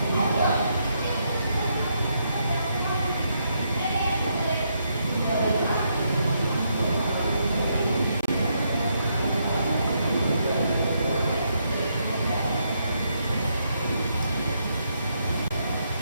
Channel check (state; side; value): inverted; both; correlation -0.78